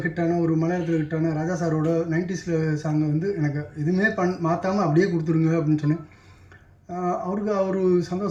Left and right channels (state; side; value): identical; both; correlation 1.00